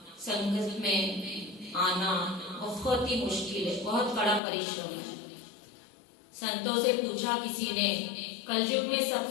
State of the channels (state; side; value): drops out; right; at 4.4 s